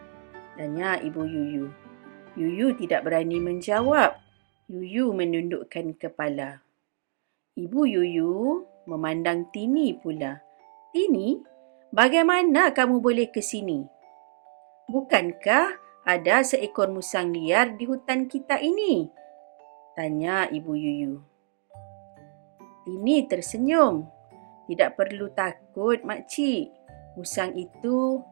Tanya Ibu Yuyu. Yuyu tidak berani menjawab. Yuyu menundukkan kepala. Ibu Yuyu memandang Tini pula. Tini, bagaimana kamu boleh ke sini? Bukankah ada seekor musang liar di hutan kita ini? Tanya Ibu Yuyu. Tini tersenyum. Tidak perlu takut, makcik. Musang itu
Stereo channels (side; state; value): left; silent; digital silence